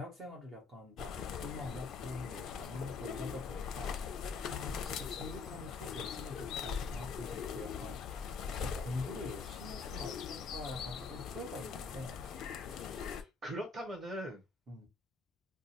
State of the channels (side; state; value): right; quieter; 4.6 dB